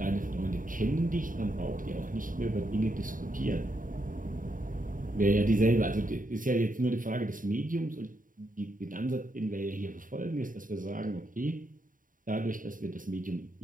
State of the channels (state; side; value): late; left; 0.39 ms